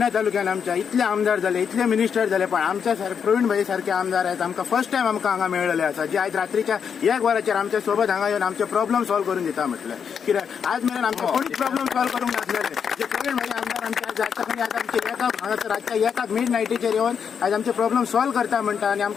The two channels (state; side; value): quieter; right; 7.1 dB